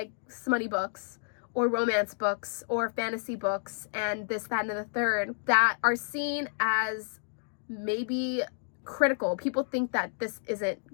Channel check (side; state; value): right; silent; digital silence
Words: smutty books or romance books or fantasy books and this, that, and the third that are seen as maybe critical. People think that